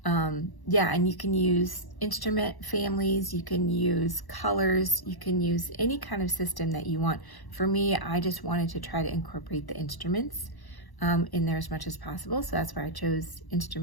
yeah, and you can use instrument families, you can use colors, you can use any kind of system that you want. For me, I just wanted to try to incorporate the instruments in there as much as possible. So that's why I chose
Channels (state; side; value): late; right; 1.0 ms